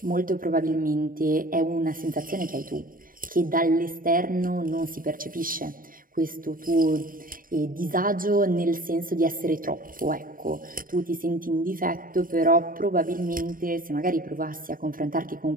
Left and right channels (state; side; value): late; left; 0.41 ms